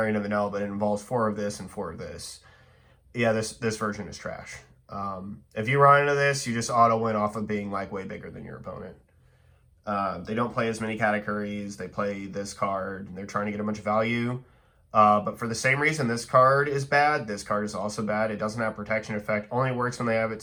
of an L, but it involves 4 of this and 4 of this. Yeah, this version is trash. If you run into this, you just auto win off of being like way bigger than your opponent. They don't play as many categories. They play this card. They're trying to get a bunch of value. But for the same reason this card is bad, this card is also bad. It doesn't have protection effect. Only works when they have it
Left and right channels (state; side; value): identical; both; correlation 1.00